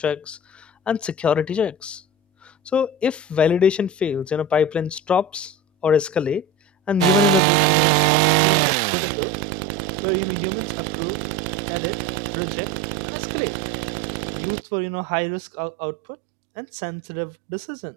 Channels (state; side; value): drops out; left; at 7.4 s